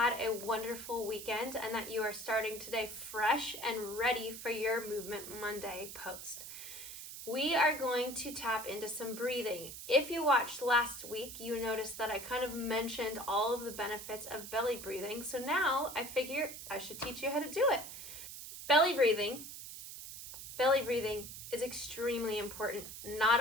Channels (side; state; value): right; noise; hiss, 11 dB below the sound